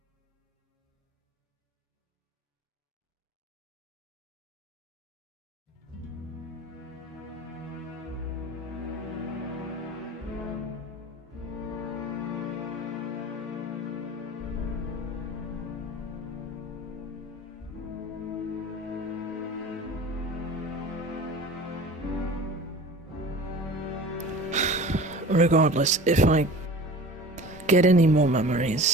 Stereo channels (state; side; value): normal; both; correlation 0.39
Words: Regardless, if I get any more